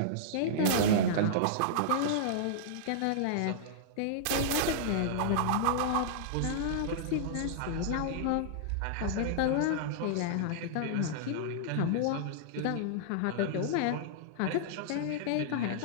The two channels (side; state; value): both; different; correlation -0.02